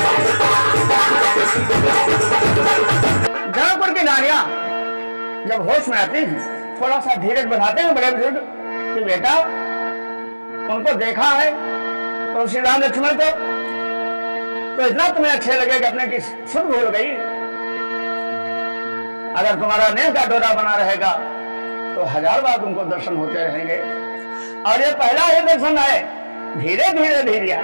जौनपुर की नारियां जब होश में आती हैं थोड़ा सा धीरज बढ़ाते हैं बड़े बुजुर्ग कि बेटा उनको देखा है तो श्री राम लक्ष्मण को तो इतना तुम्हें अच्छे लगे कि अपने की सुध भूल गई, अगर तुम्हारा नेह का डोरा बना रहेगा तो 1000 बार तुमको दर्शन होते रहेंगे। और ये पहला ही दर्शन है, धीरे धीरे धीरे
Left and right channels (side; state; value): both; inverted; correlation -1.00